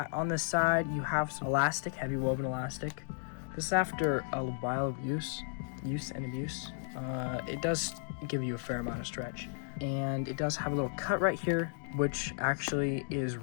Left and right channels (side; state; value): right; silent; digital silence